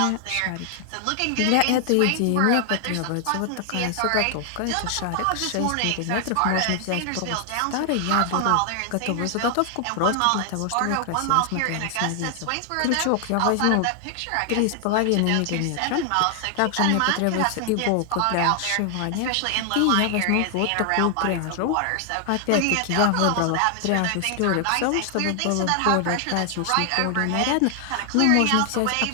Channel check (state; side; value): different; both; correlation 0.00